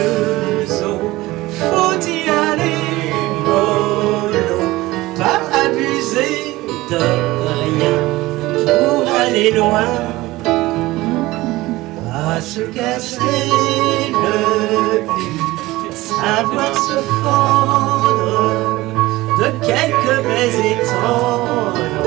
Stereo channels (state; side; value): quieter; left; 18.9 dB